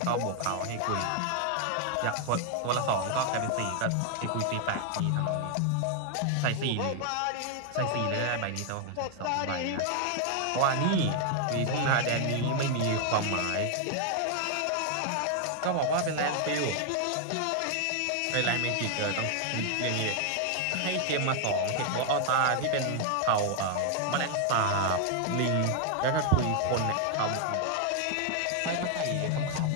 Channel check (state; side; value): different; both; correlation 0.00